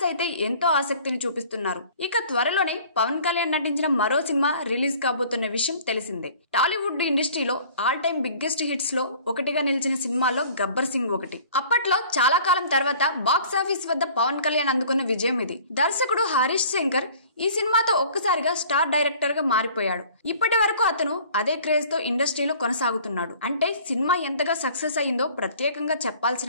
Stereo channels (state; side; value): inverted; both; correlation -0.50